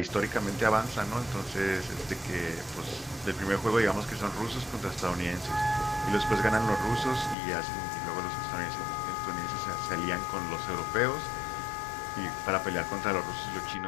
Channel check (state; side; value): drops out; right; at 7.4 s